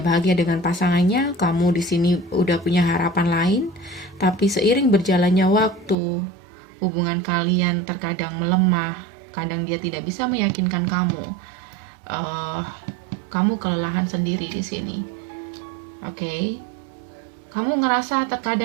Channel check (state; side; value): drops out; left; at 6.0 s